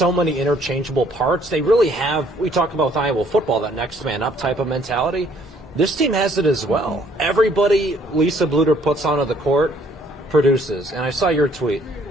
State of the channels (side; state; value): both; normal; correlation 0.63